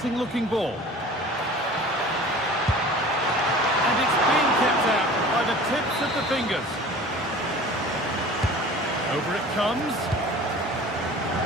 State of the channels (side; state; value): both; normal; correlation 0.42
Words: looking ball. And it's being kept out by the tips of the fingers. Over it comes.